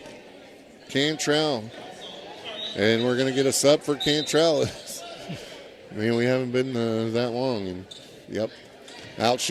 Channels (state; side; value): identical; both; correlation 1.00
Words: Cantrell. And we're going to get a sub for Cantrell. Man, we haven't been that long. And yep, out